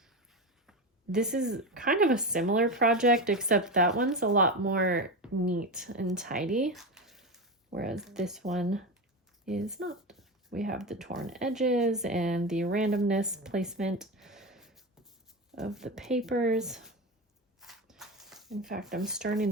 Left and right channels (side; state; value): both; normal; correlation 0.19